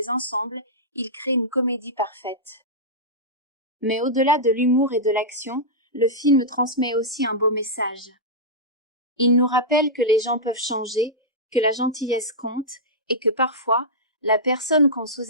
ensemble, ils créent une comédie parfaite. Mais au-delà de l'humour et de l'action, le film transmet aussi un beau message. Il nous rappelle que les gens peuvent changer, que la gentillesse compte, et que parfois, la personne qu'on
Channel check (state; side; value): normal; both; correlation -0.11